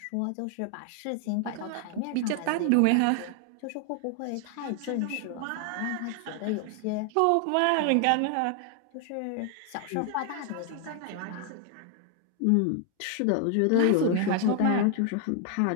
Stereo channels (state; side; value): different; both; correlation 0.00